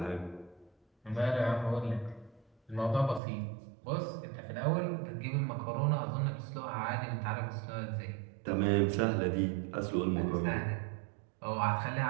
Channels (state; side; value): drops out; left; at 3.2 s